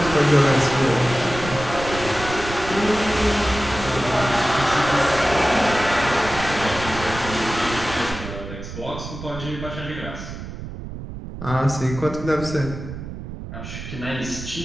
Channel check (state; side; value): noise; right; rumble, 10 dB below the sound